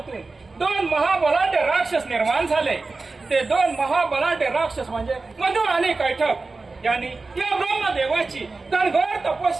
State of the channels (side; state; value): left; quieter; 3.7 dB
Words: दोन महाबलाढ्य राक्षस निर्माण झाले. ते दोन महाबलाढ्य राक्षस म्हणजे मधु आणि कैठप यांनी या ब्रह्मदेवाची कणघोर